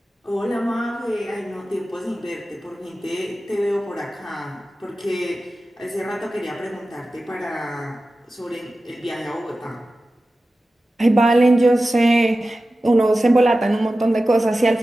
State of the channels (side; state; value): both; normal; correlation 0.95